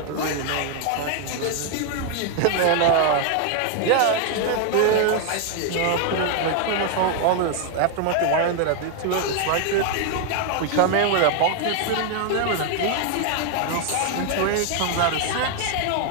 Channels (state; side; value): different; both; correlation 0.00